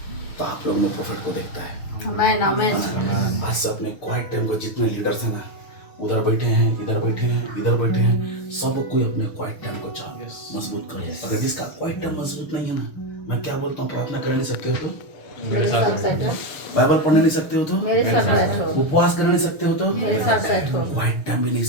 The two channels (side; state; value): right; late; 6.6 ms